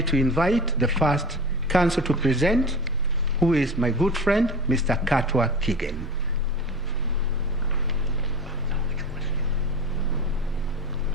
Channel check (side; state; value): both; normal; correlation 0.32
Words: to invite the first counsel to present, who is my good friend, Mr. Katwa Kigen.